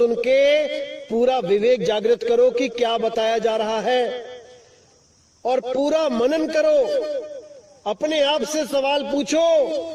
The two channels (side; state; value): both; identical; correlation 1.00